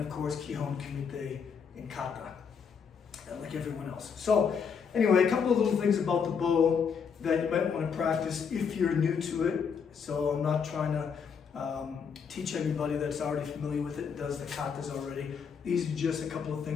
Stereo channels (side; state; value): right; quieter; 6.4 dB